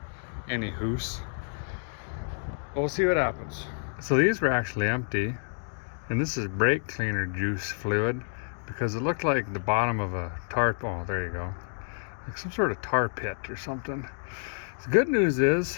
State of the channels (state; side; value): silent; right; digital silence